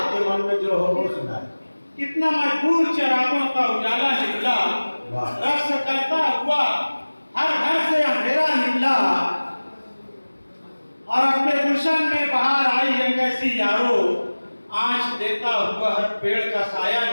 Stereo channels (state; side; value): inverted; both; correlation -1.00